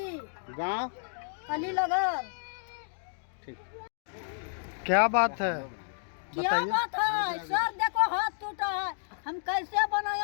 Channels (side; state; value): right; silent; digital silence